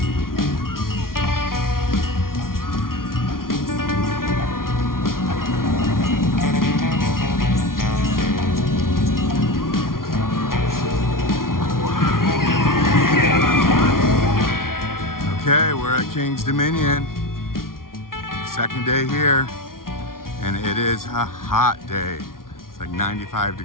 Okay, we're at King's Dominion. Second day here, and it is a hot day. It's like 95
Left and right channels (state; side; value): late; right; 0.92 ms